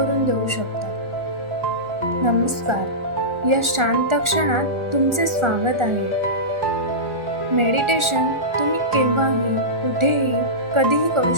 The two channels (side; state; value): left; late; 1.4 ms